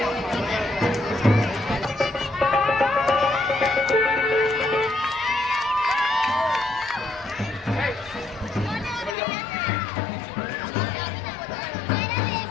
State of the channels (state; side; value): drops out; right; at 9.2 s